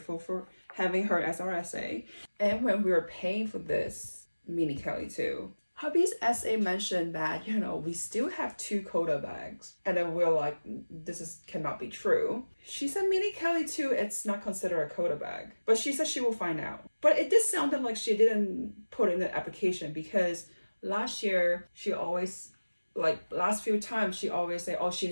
for having her as our SA. And when we were paying for this mini Kelly too, hubby's SA mentioned that, you know, we still have 2 Quota bags. And then we're like, this cannot be true. She said mini Kelly too, it's not considered a Quota bag. But she said she will find out. But it did sound like she didn't put in the application, because last year she always, like last few times, she always say, oh, she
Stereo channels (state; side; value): inverted; both; correlation -1.00